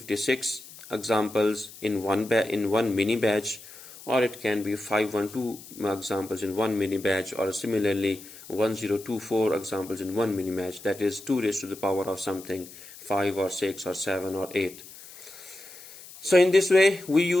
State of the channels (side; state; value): left; noise; hiss, 17 dB below the sound